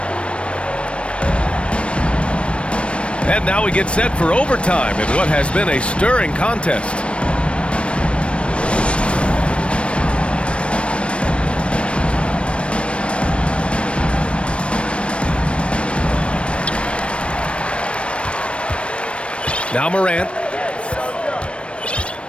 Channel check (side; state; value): right; late; 0.060 ms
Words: And now we get set for overtime in what has been a stirring contest. Now Morant.